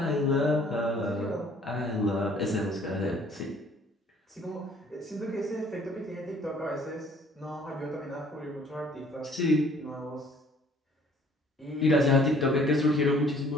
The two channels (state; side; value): normal; both; correlation 0.57